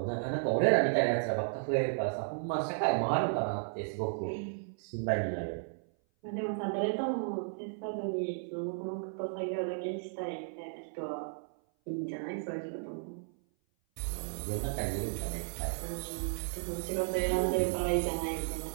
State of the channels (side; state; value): left; silent; 55 dB below the other